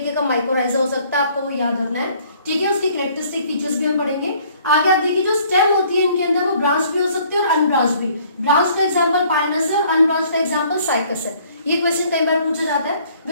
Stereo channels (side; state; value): both; inverted; correlation -0.59